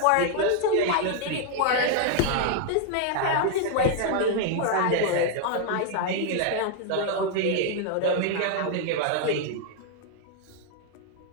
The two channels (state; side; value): different; both; correlation 0.00